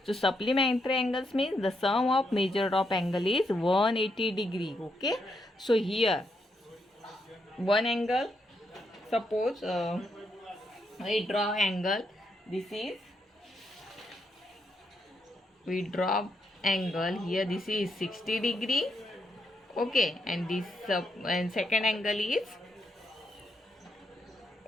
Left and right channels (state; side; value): normal; both; correlation 0.79